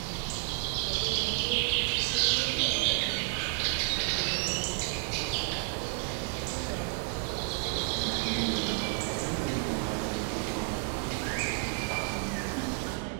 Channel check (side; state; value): left; quieter; 39.8 dB